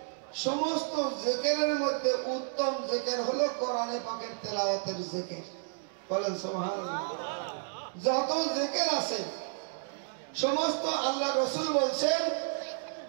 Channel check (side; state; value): left; silent; digital silence